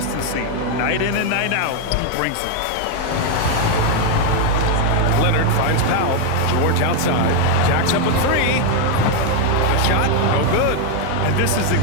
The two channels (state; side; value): different; both; correlation 0.01